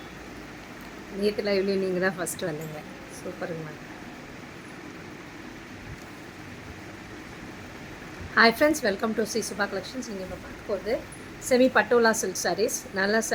நேற்று லைவ்லேயும் நீங்கள் தான் ஃபஸ்ட்டு வந்தீங்க. சூப்பருங்க ma'am. Hi friends, welcome to Sri Subha collections. நீங்கள் இப்போ பார்க்க போகிறது செமி பட்டோலா சில்க் சாரீஸ். நல்லா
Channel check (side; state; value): both; identical; correlation 1.00